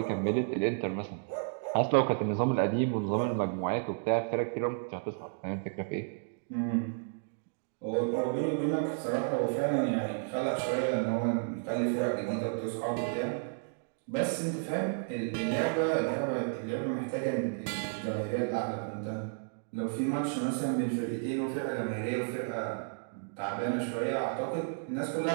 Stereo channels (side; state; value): left; silent; digital silence